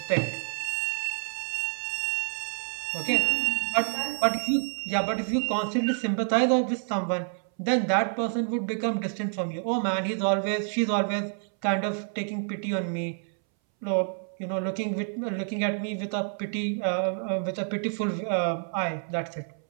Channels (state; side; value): silent; left; 59 dB below the other